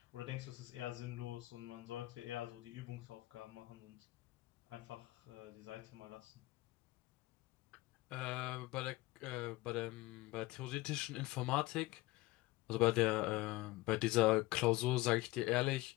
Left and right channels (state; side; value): quieter; right; 19.7 dB